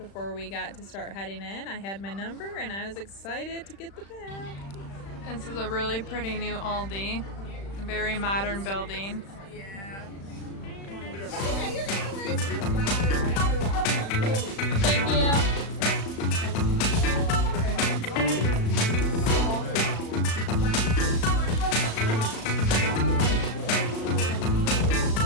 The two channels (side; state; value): right; late; 36 ms